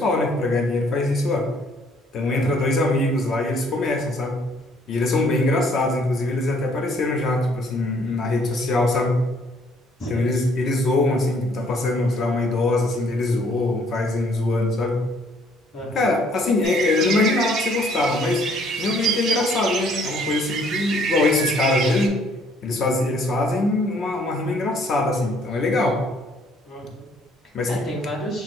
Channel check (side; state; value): both; normal; correlation 0.63